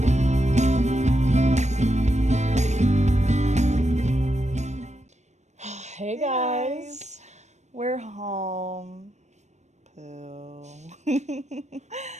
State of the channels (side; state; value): left; late; 0.34 ms